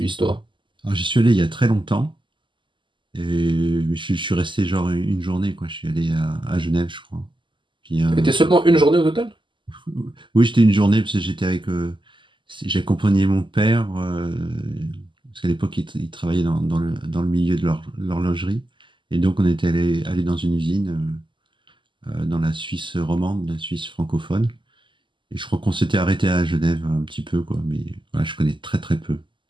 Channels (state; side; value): late; left; 0.24 ms